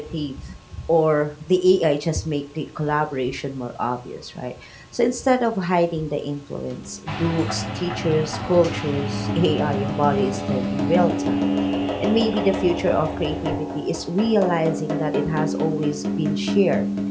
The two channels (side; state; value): both; identical; correlation 1.00